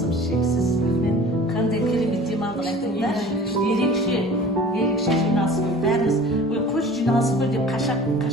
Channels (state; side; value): normal; both; correlation 0.43